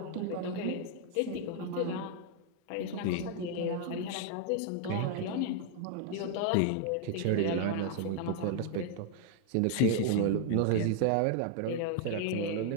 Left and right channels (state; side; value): different; both; correlation 0.00